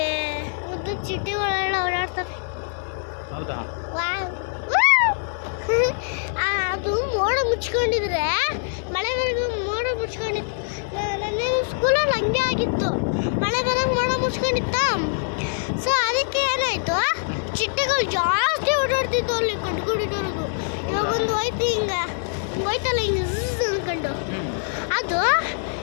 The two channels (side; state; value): right; silent; 57 dB below the other